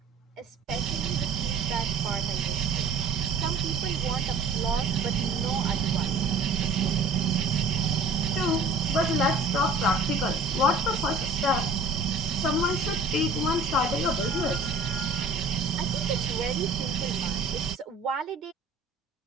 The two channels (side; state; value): left; quieter; 3.3 dB